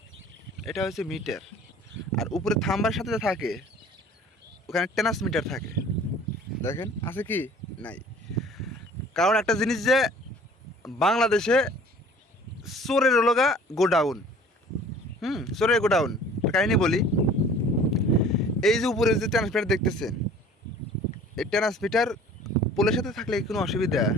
এটা হচ্ছে মিটার। আর উপরে থাম্বার সাথে থাকে, ওখানে ট্রান্সমিটার থাকে। দেখেন আছে কি? নাই। কারণ একটা জিনিস যে বাংলাদেশে চোরের লগা গোডাউন। চোরের গোডাউন। কাহিনী বলি, এই যে উপরে যে ট্রান্সমিটার দেখতেছেন, এই ট্রান্সমিটার পোলের সাথে থাকলে কোনো অসুবিধা?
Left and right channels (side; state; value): both; normal; correlation 0.49